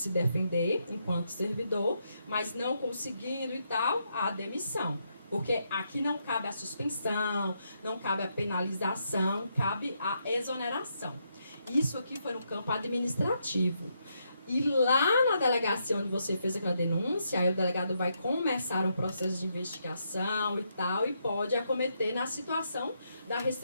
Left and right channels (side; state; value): both; inverted; correlation -0.79